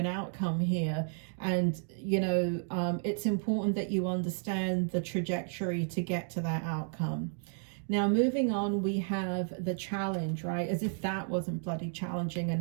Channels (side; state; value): left; silent; digital silence